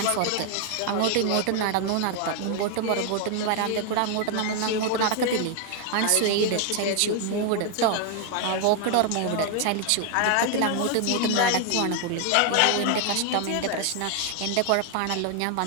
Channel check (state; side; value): different; both; correlation 0.00